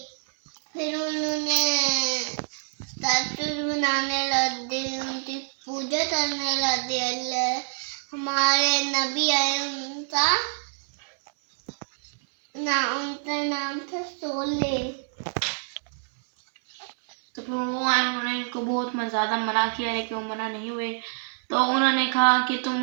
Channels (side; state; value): left; silent; 61 dB below the other